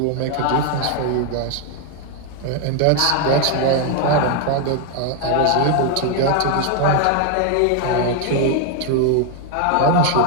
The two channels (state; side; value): different; both; correlation 0.00